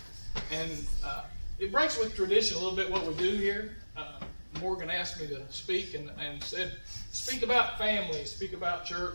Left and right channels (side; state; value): both; inverted; correlation -1.00